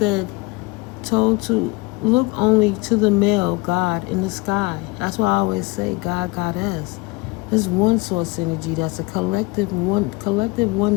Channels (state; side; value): quieter; right; 24.9 dB